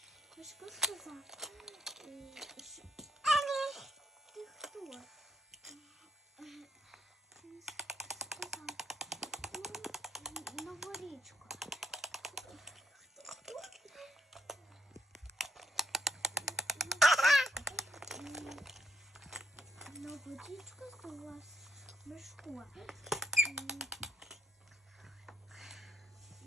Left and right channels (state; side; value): normal; both; correlation 0.72